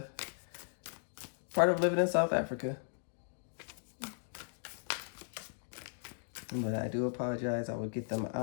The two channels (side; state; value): right; silent; digital silence